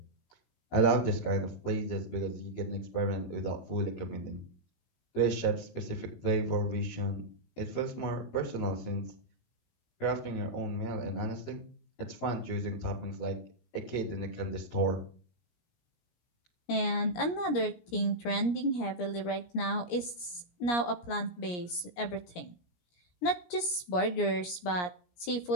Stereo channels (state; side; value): late; right; 17 ms